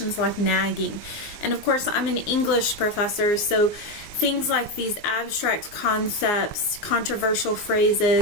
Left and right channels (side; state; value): right; late; 19 ms